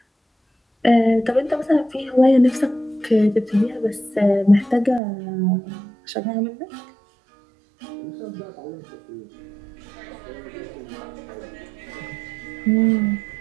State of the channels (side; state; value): left; drops out; at 5.0 s